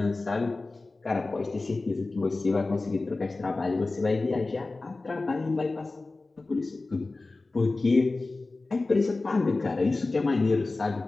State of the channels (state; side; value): quieter; right; 3.4 dB